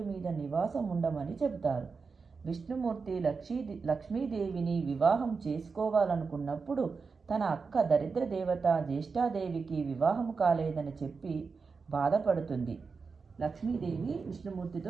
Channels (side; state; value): left; quieter; 4.9 dB